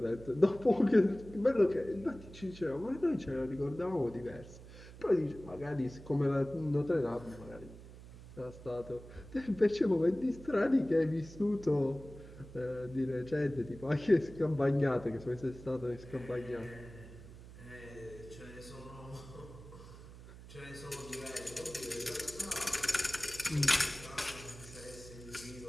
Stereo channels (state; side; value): noise; right; hum, 16 dB below the sound